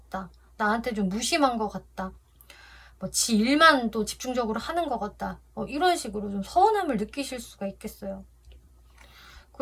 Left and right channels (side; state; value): both; identical; correlation 1.00